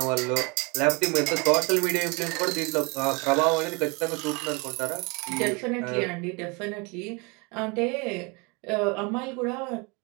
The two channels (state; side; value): quieter; left; 29.1 dB